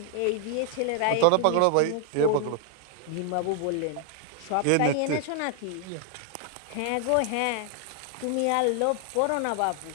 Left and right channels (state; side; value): different; both; correlation 0.00